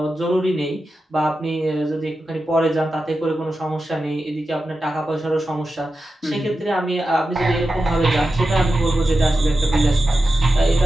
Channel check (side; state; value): both; normal; correlation 0.91